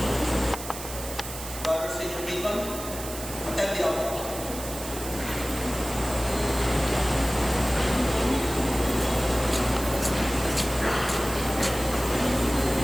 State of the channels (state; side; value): noise; right; hiss, 10 dB below the sound